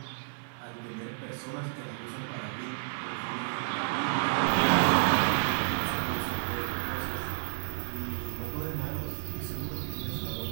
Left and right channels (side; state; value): left; silent; digital silence